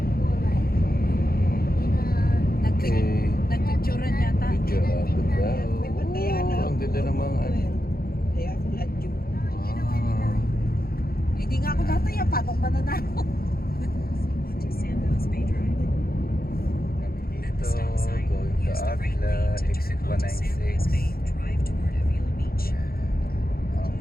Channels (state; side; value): late; right; 0.44 ms